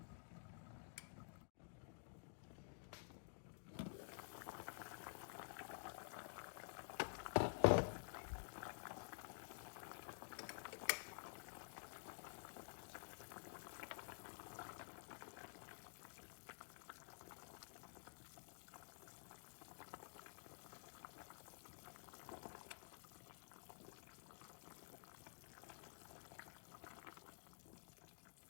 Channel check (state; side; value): silent; right; digital silence